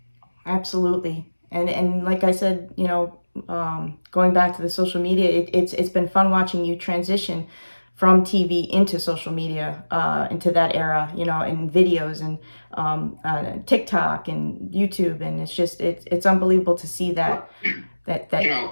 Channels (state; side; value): inverted; both; correlation -1.00